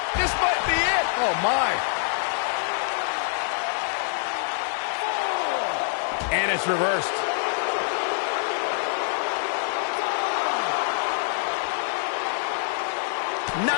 This might be it. Oh, my. And it's reversed.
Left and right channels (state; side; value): silent; right; digital silence